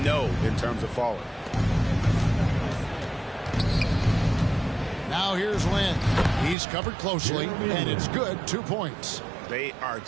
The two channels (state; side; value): drops out; left; at 6.6 s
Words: no in terms of falling. Now here's Lynn. He's covered closely, and it's good. 2 points. They are